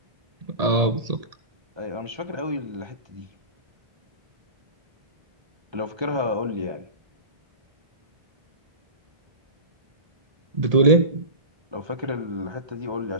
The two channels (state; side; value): late; left; 1.8 ms